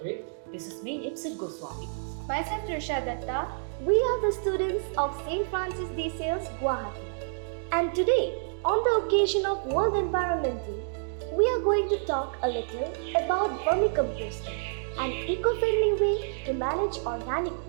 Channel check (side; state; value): left; silent; digital silence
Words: This is me, Ipsit Goswami. Myself, Trisha Datta. We are the students of St. Francis de Sales, Guwahati. And today, on the occasion of World Environment Day, we are going to talk a little about vermicomposting, an eco-friendly way to manage organic